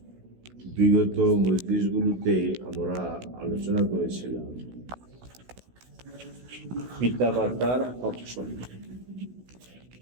বিগত মজলিসগুলোতে আমরা আলোচনা করেছিলাম পিতামাতার হক সম্পর্কে।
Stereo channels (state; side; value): late; left; 16 ms